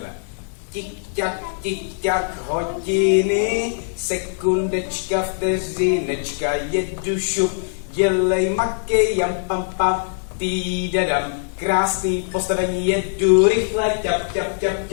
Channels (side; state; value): right; silent; digital silence